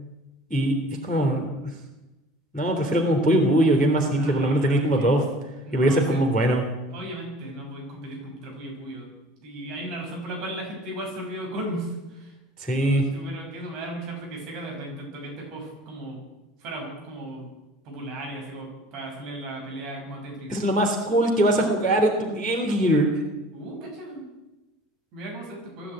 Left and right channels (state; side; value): normal; both; correlation 0.49